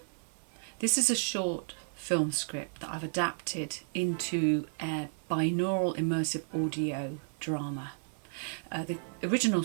This is a short film script that I've adapted into a binaural immersive audio drama. The original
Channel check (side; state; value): left; silent; 55 dB below the other